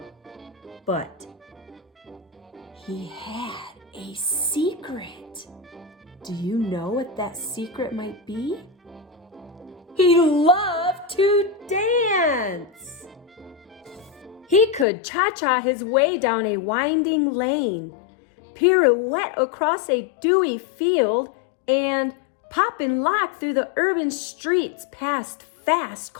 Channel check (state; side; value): drops out; right; at 14.9 s